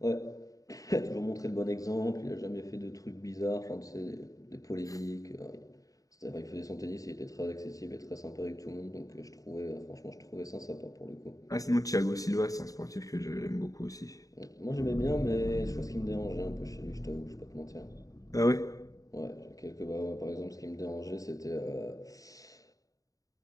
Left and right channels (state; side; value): late; right; 0.17 ms